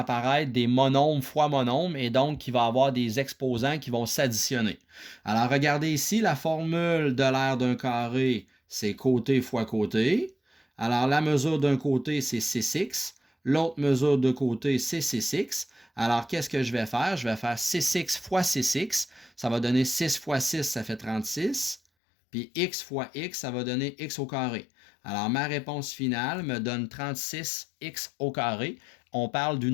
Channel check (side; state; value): right; drops out; at 21.8 s